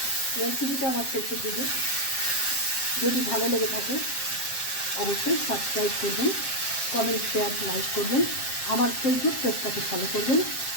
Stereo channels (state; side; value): late; right; 7.5 ms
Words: রেসিপিটা আমার শেষের দিকে। যদি ভালো লেগে থাকে অবশ্যই সাবস্ক্রাইব করবেন, কমেন্ট, শেয়ার, লাইক করবেন। আমার ফেসবুক পেজটাকে ফলো করবেন।